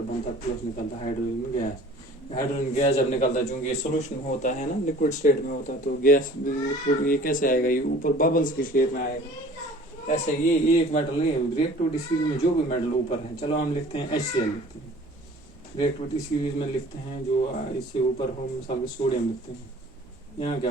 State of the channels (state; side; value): normal; both; correlation 0.48